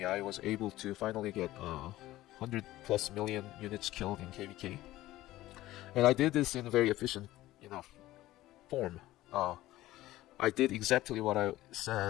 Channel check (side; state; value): right; quieter; 16.1 dB